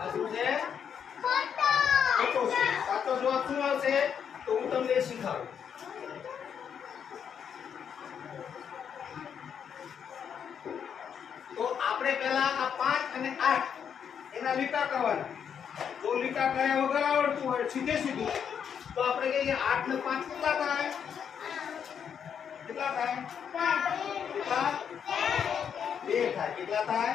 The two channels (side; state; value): right; quieter; 7.8 dB